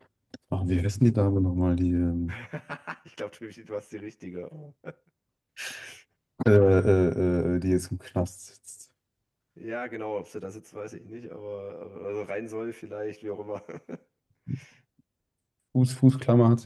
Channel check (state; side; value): identical; both; correlation 1.00